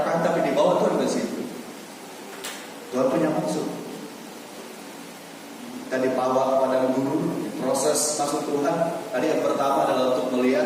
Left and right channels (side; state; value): both; identical; correlation 1.00